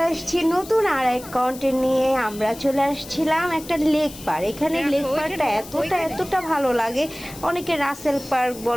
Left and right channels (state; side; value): noise; left; hiss, 16 dB below the sound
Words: আসছি নতুন আর এক কন্টেন্ট নিয়ে। আমরা চলে আসছিলাম একটা লেক পার্ক। এখানে লেক পার্কটা এতটা ভালো লাগে। অনেকে রাসেল পার্ক